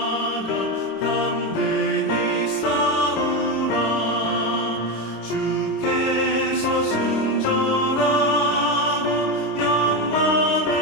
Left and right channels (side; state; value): right; late; 26 ms